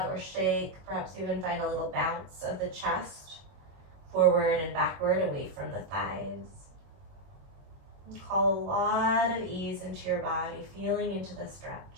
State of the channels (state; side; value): late; left; 22 ms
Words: or shake. Perhaps you even find a little bounce of the chest, forward and backward, away from the thighs. And call a lot of ease into your body, feeling into the